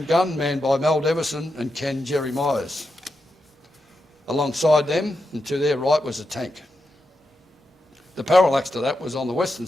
gun, manned by Mel Devison and Ken Jerry Myers. Alongside them, and to their right, was a tank. The parallax to that was on the western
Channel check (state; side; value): normal; both; correlation 0.87